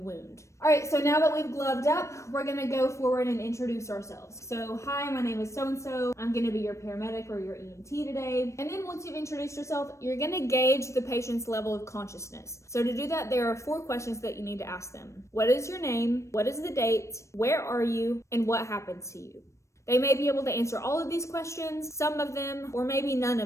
wound. All right, so now that we've gloved up, we're going to go forward and introduce ourselves. So, hi, my name is so-and-so. I'm going to be your paramedic or your EMT today. And then once you've introduced yourself, you're going to gauge the patient's level of consciousness. So to do that, there are 4 questions that you need to ask them. What is your name? What is the date? Where are you? And what happened to you? They may be able to answer all of these questions, some of them, or maybe none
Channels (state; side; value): late; right; 0.14 ms